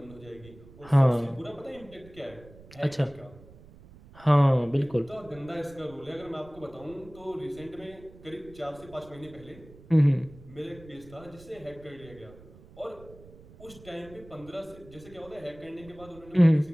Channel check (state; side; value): noise; right; rumble, 21 dB below the sound